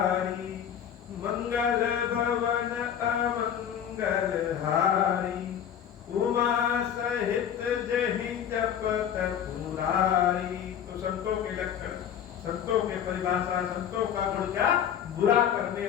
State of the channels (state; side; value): quieter; right; 9.1 dB